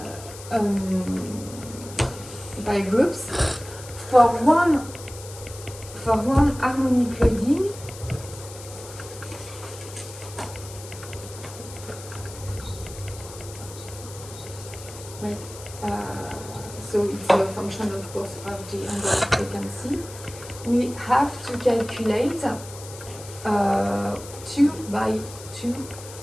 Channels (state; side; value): noise; left; hiss, 15 dB below the sound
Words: pile groups, for one harmonic loading, right, so it's a function of course of the angle of frequency, we have to calculate 2 by 2